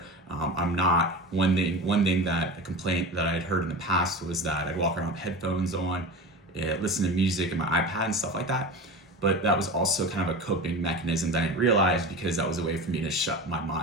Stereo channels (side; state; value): both; normal; correlation 0.30